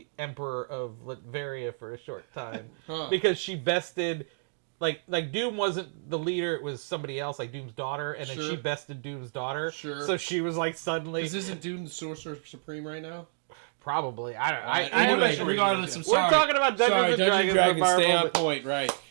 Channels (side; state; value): left; silent; digital silence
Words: Emperor of Latveria for a short time because she bested, like Doom wasn't the leader; it was somebody else, like Doom's daughter, and then she bested Doom's daughter. Sure. So she was like suddenly. Isn't Doom the Sorcerer Supreme right now? Probably. I don't. Anyway, regardless, I'm sorry. We're talking about Dungeons and Dragons. Stay on point, right?